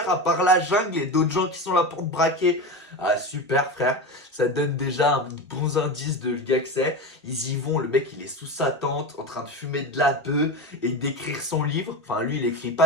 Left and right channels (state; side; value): normal; both; correlation 0.22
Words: à part la jungle et d'autres gens qui sont là pour te braquer. Ah, super, frère. Ça donne déjà un bon indice de le gars que c'est. Ils y vont, le mec, il est sous sa tente, en train de fumer de la bœuf et d'écrire son livre. Enfin, lui, il écrit